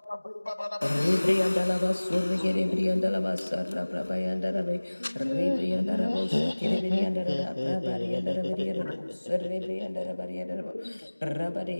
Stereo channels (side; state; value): both; inverted; correlation -1.00